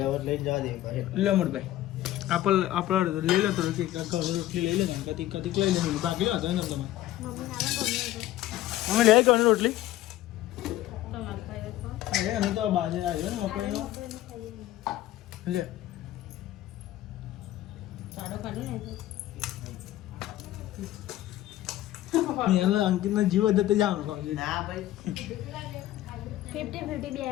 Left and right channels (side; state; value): right; quieter; 14.6 dB